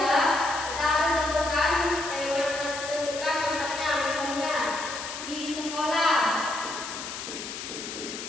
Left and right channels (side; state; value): left; noise; hiss, 8 dB below the sound